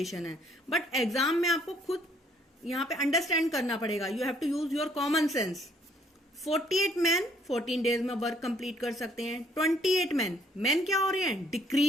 है, बट एग्जाम में आपको खुद यहाँ पे अंडरस्टैंड करना पड़ेगा. You have to use your common sense. 48 man 14 days में वर्क कंप्लीट कर सकते हैं. 28 मैन क्या हो रहे हैं?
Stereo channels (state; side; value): normal; both; correlation 0.64